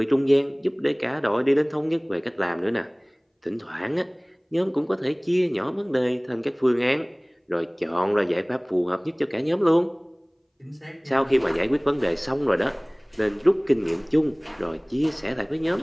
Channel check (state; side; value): identical; both; correlation 1.00